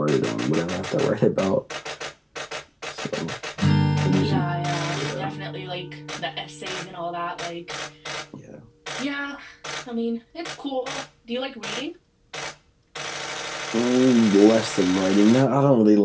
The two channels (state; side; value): identical; both; correlation 1.00